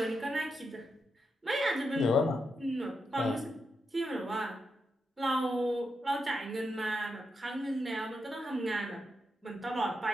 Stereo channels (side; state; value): both; normal; correlation 0.85